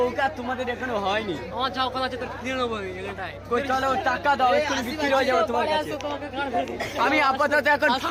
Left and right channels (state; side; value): identical; both; correlation 1.00